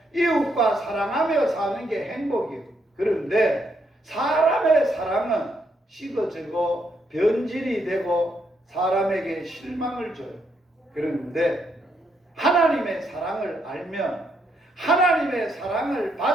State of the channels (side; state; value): both; normal; correlation 0.76